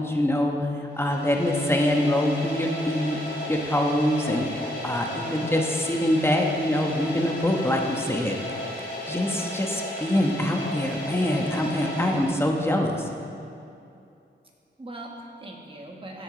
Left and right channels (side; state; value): both; normal; correlation 0.74